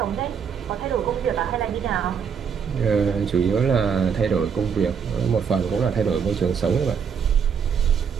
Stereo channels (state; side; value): quieter; left; 6.8 dB